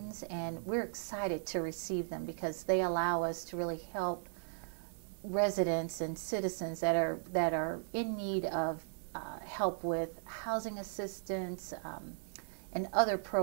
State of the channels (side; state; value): left; silent; 53 dB below the other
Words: and we're excited to receive them because they allow us to really help residents and citizens that are in need of help with housing assistance and other